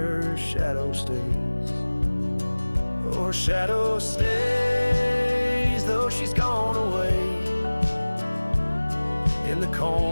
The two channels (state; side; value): inverted; both; correlation -1.00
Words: her shadow stays. Oh, her shadow stays, though she's gone away, in the